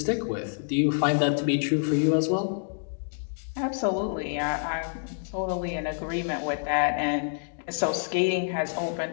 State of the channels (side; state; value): right; silent; digital silence